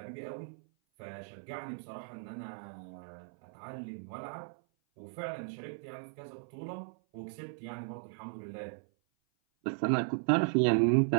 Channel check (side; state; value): left; silent; 54 dB below the other